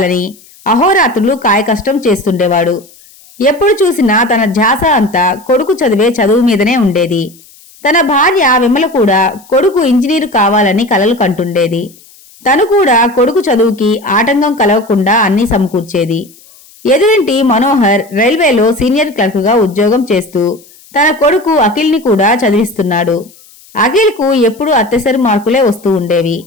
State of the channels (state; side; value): noise; left; hiss, 26 dB below the sound